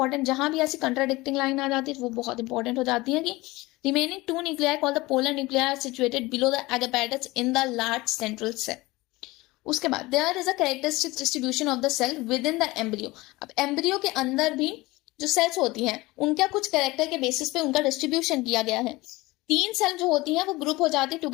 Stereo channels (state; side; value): quieter; right; 20.9 dB